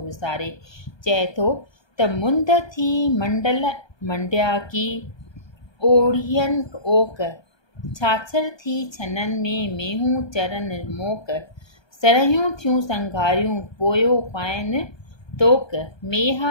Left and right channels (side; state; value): right; late; 1.2 ms